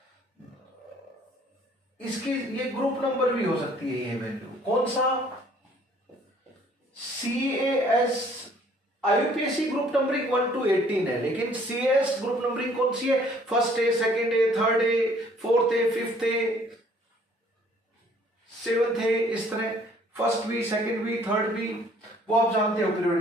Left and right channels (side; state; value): both; normal; correlation 0.59